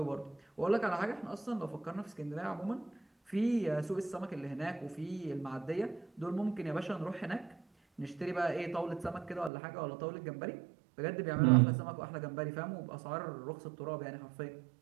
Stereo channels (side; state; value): left; drops out; at 9.5 s